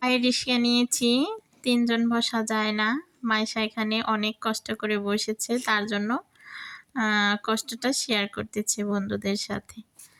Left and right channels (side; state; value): both; identical; correlation 1.00